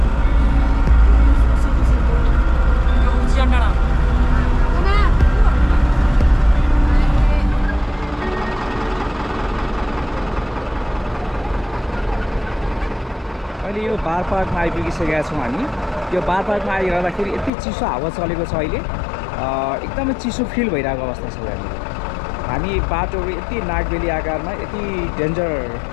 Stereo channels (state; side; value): drops out; right; at 17.5 s